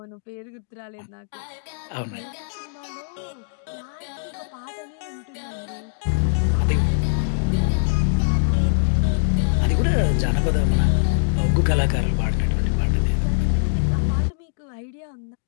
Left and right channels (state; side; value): silent; right; digital silence